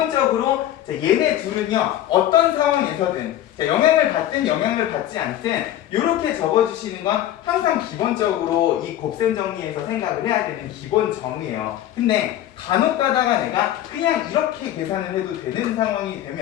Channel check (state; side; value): quieter; right; 12.4 dB